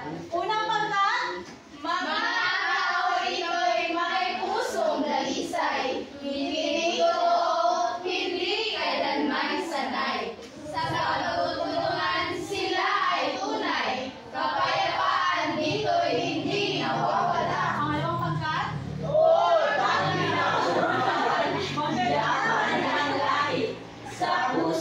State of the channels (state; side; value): identical; both; correlation 1.00